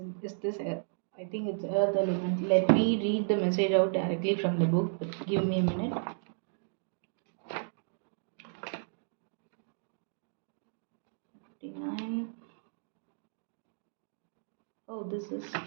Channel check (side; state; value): left; silent; digital silence